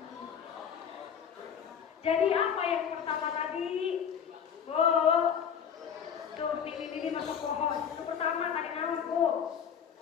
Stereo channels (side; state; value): right; quieter; 7.7 dB